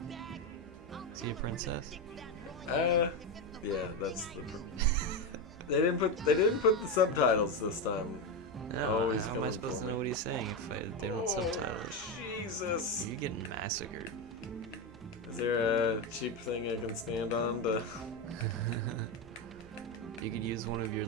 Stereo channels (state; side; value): normal; both; correlation 0.11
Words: Is he a princess? Yeah, that's the. They didn't put the subtitles this time. No, Always how am I coming supposed for to know me. what he's saying if they don't subtitles? Jesus! You're getting massacred. Is there a cheap thing I can stand on to? You could use one of your